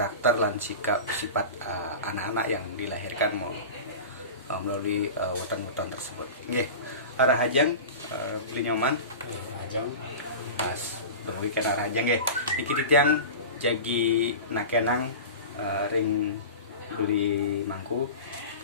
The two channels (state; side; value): inverted; both; correlation -0.31